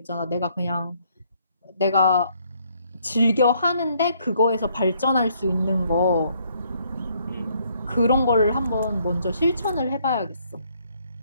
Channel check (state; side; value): inverted; both; correlation -0.68